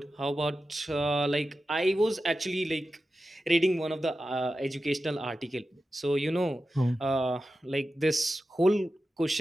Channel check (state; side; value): normal; both; correlation 0.92